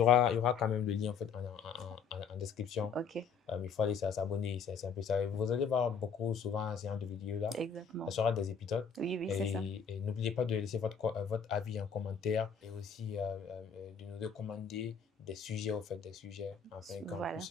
aura quand même le lien en fait en description. Ok. Il faut aller s'abonner, c'est un peu ça. Vous allez voir souvent ce genre de vidéos là. Exactement. Ça sera des épisodes. Oui, c'est ça. Et n'oubliez pas de laisser votre avis en commentaire et aussi de nous recommander des sujets, enfin, enfin, voilà.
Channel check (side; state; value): right; quieter; 6.4 dB